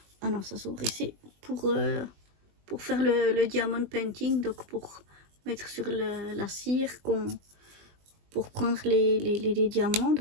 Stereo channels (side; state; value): left; late; 20 ms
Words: ah non, ça s'ouvre ici, pour faire le diamond painting, donc pour mettre sur la cire, pour prendre les diamants,